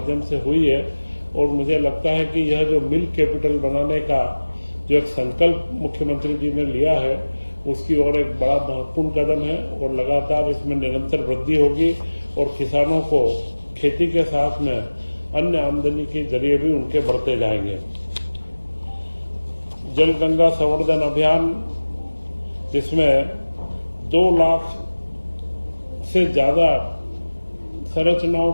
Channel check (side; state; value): both; inverted; correlation -1.00